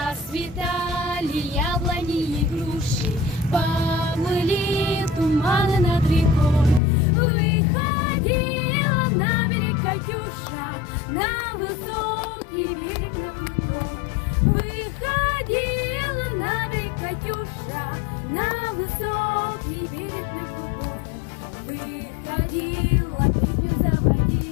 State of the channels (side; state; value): right; drops out; at 6.8 s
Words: яблони и груши, поплыли туманы над рекой. Выходила на берег Катюша, на высокий берег, на крутой. Выходила на берег Катюша, на высокий берег, на крутой. Выходила, песню